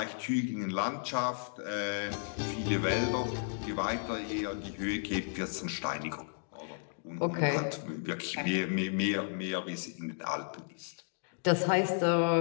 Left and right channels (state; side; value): silent; right; digital silence